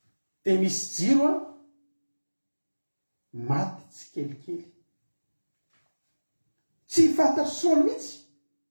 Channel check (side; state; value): both; inverted; correlation -1.00